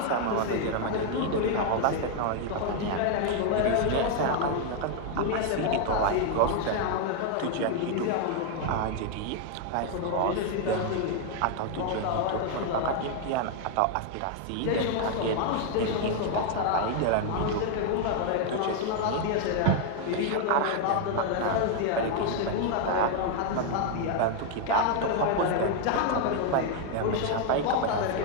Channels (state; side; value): different; both; correlation 0.00